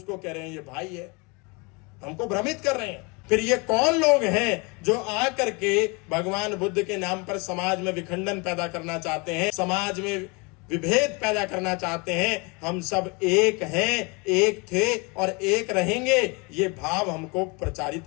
कह रहे हैं ये भाई है। हमको भ्रमित कर रहे हैं। फिर ये कौन लोग हैं जो आकर के भगवान बुद्ध के नाम पर समाज में विखंडन पैदा करना चाहते हैं, समाज में विभेद पैदा करना चाहते हैं? हम सब एक हैं, एक थे और एक रहेंगे, ये भाव हमको प्रचारित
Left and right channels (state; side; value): quieter; right; 29.4 dB